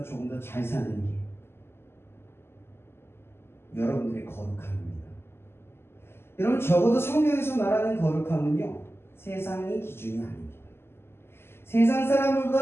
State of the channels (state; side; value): late; right; 0.12 ms